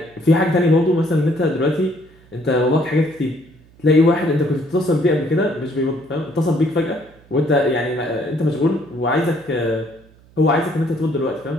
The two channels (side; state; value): right; noise; hum, 28 dB below the sound